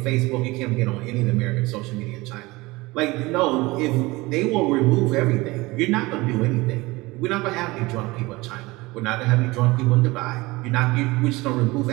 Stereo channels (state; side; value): quieter; left; 21.8 dB